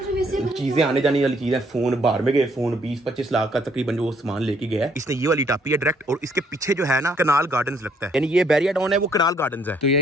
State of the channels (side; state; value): both; normal; correlation 0.67